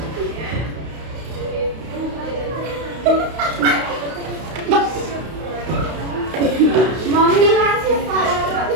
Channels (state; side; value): late; left; 32 ms